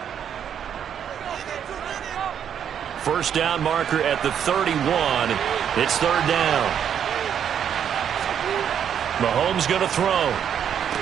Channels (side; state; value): left; quieter; 8.7 dB